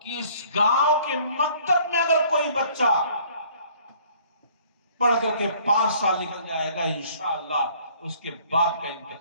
کہ اس گاؤں کے مکتب میں اگر کوئی بچہ پڑھ کر کے 5 سال نکل جائے گا، انشاءاللہ اس کے باپ کا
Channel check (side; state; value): both; inverted; correlation -0.56